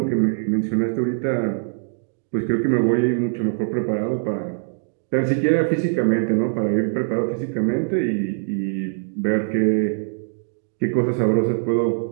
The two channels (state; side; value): silent; left; digital silence